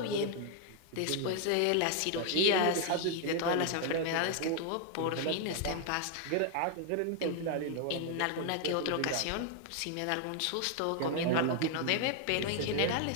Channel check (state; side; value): different; both; correlation 0.00